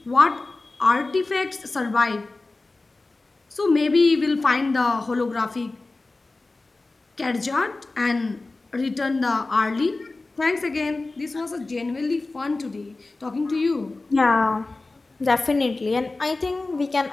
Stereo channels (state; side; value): quieter; right; 3.3 dB